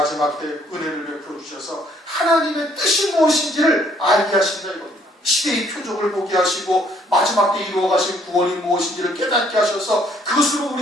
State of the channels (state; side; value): normal; both; correlation 0.64